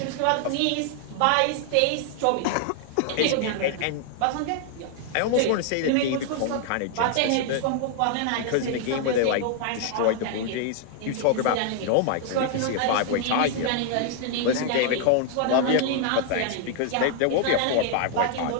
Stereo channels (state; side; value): different; both; correlation 0.00